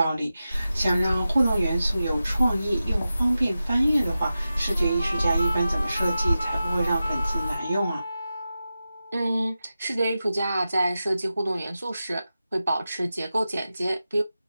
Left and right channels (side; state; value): both; inverted; correlation -0.93